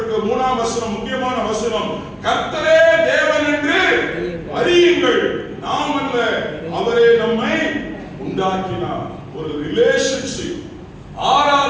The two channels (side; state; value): both; identical; correlation 1.00